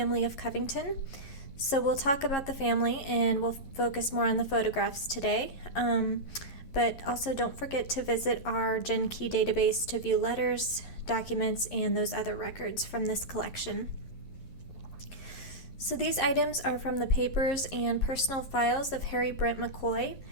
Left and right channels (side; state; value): right; late; 11 ms